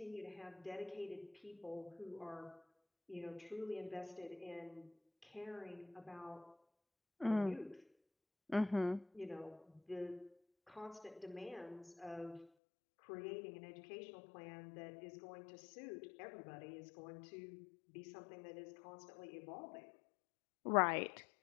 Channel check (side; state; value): right; drops out; at 12.5 s